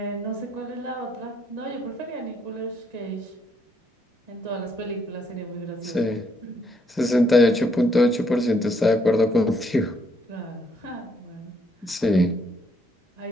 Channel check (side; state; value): both; normal; correlation 0.71